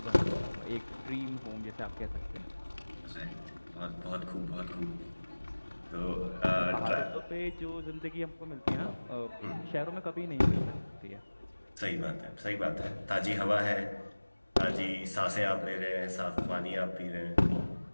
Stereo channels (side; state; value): both; inverted; correlation -1.00